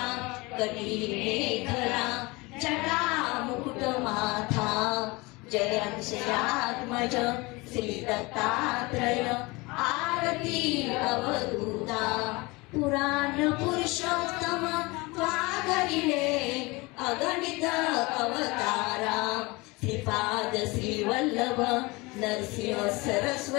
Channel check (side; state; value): right; quieter; 24.3 dB